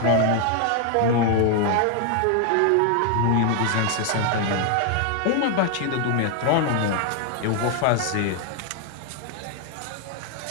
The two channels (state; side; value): different; both; correlation 0.00